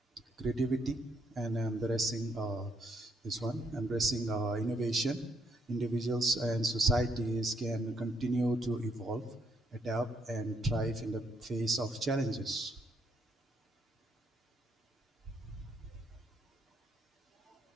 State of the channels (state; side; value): normal; both; correlation 0.73